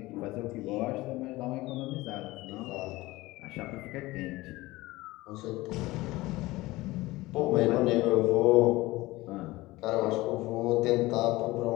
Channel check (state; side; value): quieter; right; 19.5 dB